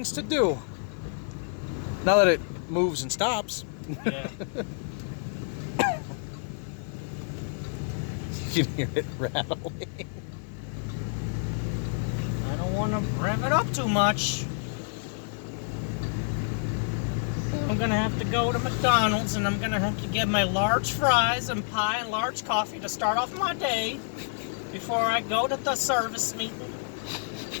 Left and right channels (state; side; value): silent; right; digital silence